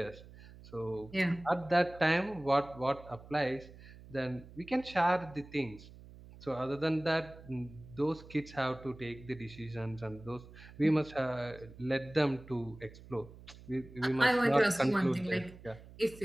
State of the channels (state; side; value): noise; right; hum, 19 dB below the sound